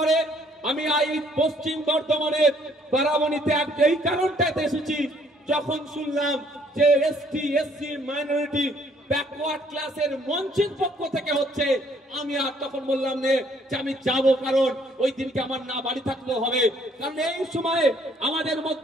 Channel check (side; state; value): both; normal; correlation 0.63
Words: আমি এই পশ্চিম বর্ধমানের বারাবণীতে এই কারণটাতে এসেছি, যখন শুনলাম যে এসটি এসসি মাইনরিটি ব্যাকওয়ার্ড ক্লাসের মঞ্চের পক্ষ থেকে হচ্ছে, আমি আর তখন বললাম যে আমি যাব, কারণ ওই দিনকে আমার না বাড়ি থাকলেও হবে। কারণ এই সময়ে আমাদের